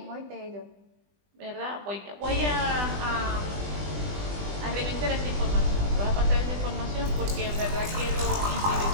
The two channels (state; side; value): late; left; 20 ms